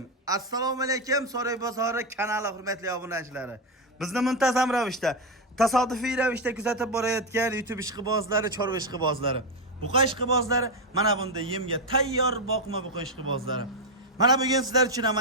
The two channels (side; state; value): both; normal; correlation 0.07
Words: Assalomu alaykum So'roy bozori kanali hurmatli obunachilari. Bizni muntazam ravishda, tasodifiy ravishda kuzatib borayotgan YouTube ishqibozlari, chorva ishqibozlari. Buqa ishqibozlari mana bunda yemga tayyor boqma buqa ishqibozlari. Mana bugun sizlar uchun